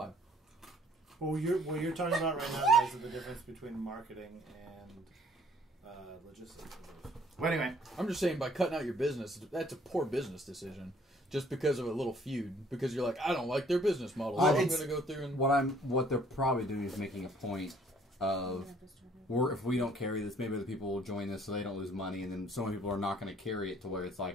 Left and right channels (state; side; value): normal; both; correlation 0.60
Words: Well, what you're talking about right now, guys, is the difference between marketing and logistics. Well, anyway, I'm just saying, by cutting out your business, that's a poor business decision. Just because of a little feud. Because you're like, I don't like their business model. So I'm going to go through and... What they're probably doing is making a point of... if we don't carry this, maybe other people will join this so they don't lose money, and then so many people are not going to carry it to where it's